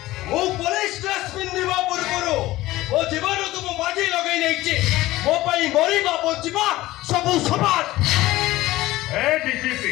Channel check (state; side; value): quieter; right; 17.3 dB